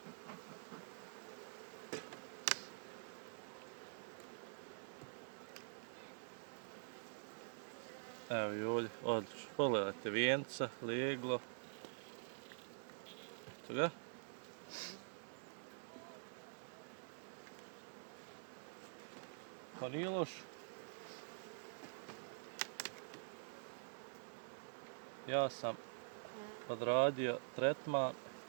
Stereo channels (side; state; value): left; silent; digital silence